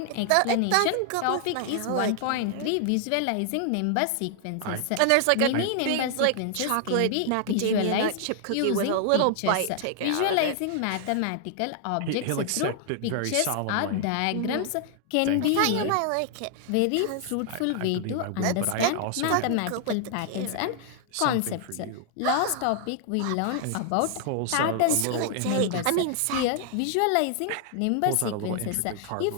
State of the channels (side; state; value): both; different; correlation 0.00